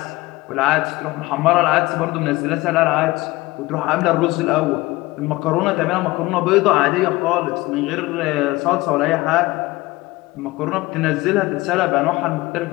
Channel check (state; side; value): quieter; right; 20.3 dB